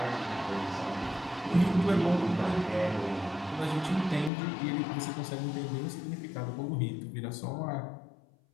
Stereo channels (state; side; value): drops out; right; at 4.3 s